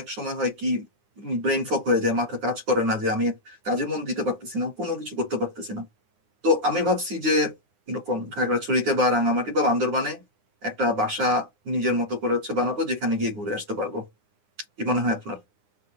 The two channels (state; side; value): late; left; 9.7 ms